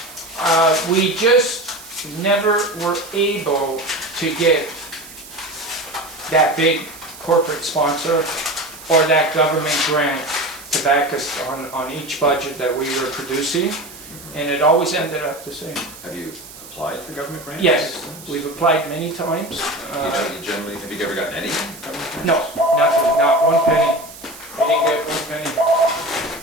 we just never were able to get that big corporate sponsor or that government grant to back us on each budget that we were producing, and it always ended up the same. Have you applied for government grants? Yes, we've applied many times. You generally, have you ever gotten any government grants? No, nothing, not one penny. We didn't get one penny.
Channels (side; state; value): right; noise; hiss, 17 dB below the sound